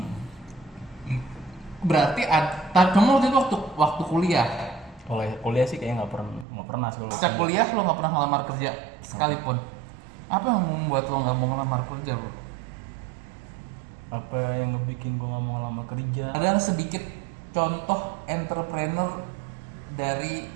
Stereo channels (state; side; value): drops out; left; at 6.5 s